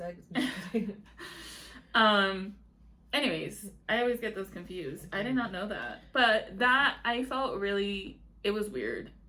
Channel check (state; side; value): identical; both; correlation 1.00